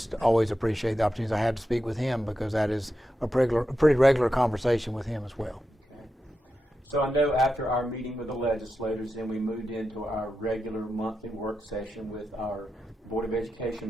always appreciate the opportunities I had to speak with him, because that is a pretty regular conversation with him as well. So I know after our meeting with the legislators, then we moved into our regular monthly work session with our Board of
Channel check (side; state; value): both; normal; correlation 0.89